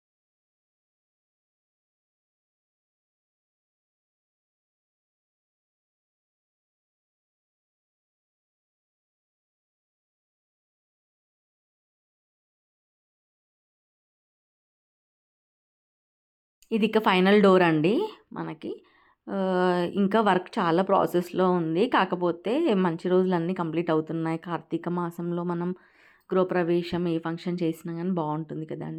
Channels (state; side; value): identical; both; correlation 1.00